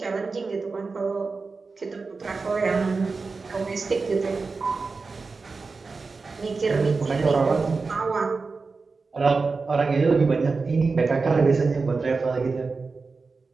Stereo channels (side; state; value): left; quieter; 4.3 dB